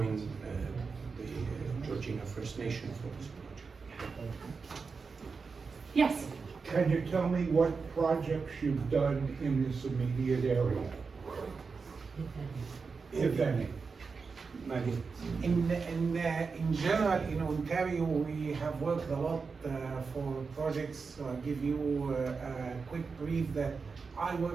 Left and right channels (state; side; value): quieter; left; 4.9 dB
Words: the Georgina First Nation for this project. Yes. Can you tell me what projects you've done in this immediate area? If any. Maggie? In general, in Ontario, we have worked a lot for projects. So I'll give you a quick brief that I